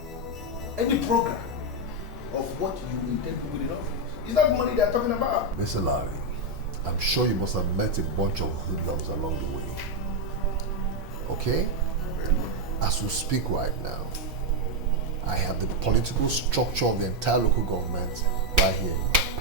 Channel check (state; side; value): normal; both; correlation 0.04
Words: any program of what you intend to do in office. Is that money they are talking about? Mr. Larry, I'm sure you must have met a bunch of hoodlums along the way. Okay? As we speak right now, I have the political structure of the entire local government right here in my